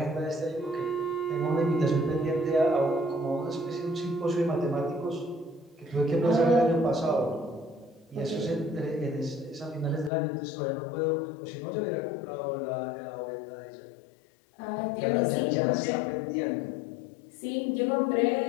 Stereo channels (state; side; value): drops out; right; at 10.1 s